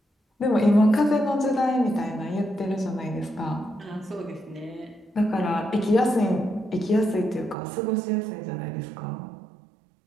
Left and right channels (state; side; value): drops out; left; at 7.6 s